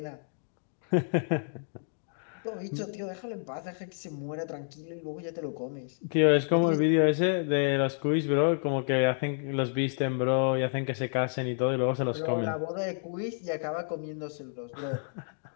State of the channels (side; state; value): right; silent; digital silence